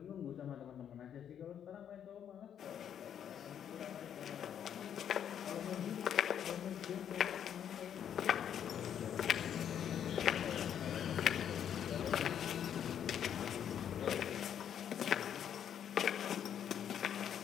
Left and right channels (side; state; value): right; quieter; 9.1 dB